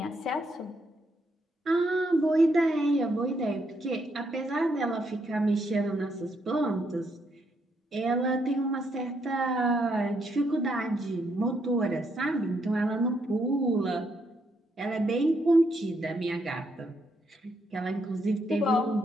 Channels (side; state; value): both; normal; correlation 0.76